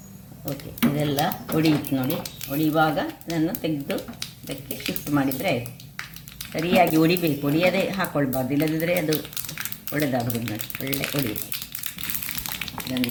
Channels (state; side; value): identical; both; correlation 1.00